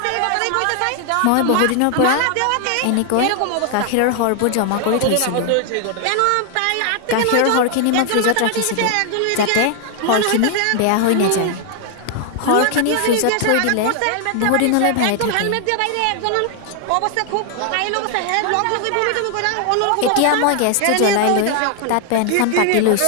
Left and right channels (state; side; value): different; both; correlation 0.00